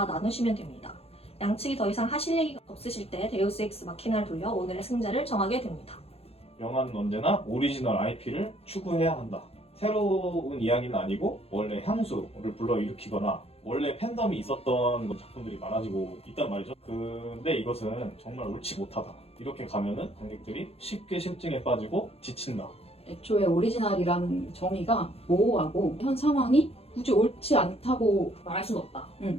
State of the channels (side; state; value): right; late; 0.29 ms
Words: 나누시면 됩니다. 양측이 더 이상 하실 얘기가 없으실 때 데우스 엑스 마키나를 돌려 오늘의 승자를 정하게 됩니다. 영화는 언제나 오리지널 IP를 추구해야 한다. 새로운 이야기는 아니고 원래 향수를 불러일으키거나 원래 팬덤이 있었던 작품들이 많아지고 있단 말이죠. 근데 이것은 정말 옳지 못하다. 이렇게 가면은 관객들이 쉽게 실증에 빠지고 지친다. 애초에 오리지널이라는 정의가 모호하고 현 상황이 굳이 옳지 않다고 말할 수는 없다.